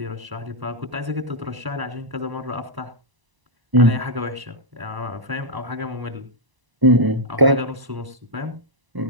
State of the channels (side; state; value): left; late; 1.0 ms